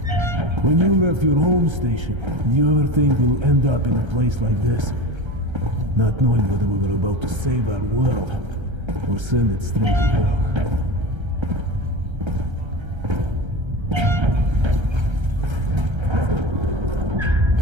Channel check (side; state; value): left; late; 1.3 ms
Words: When you left your home station, do you ever think we'll end up in a place like this? Not knowing whether we were about to save our world, or send it straight to hell.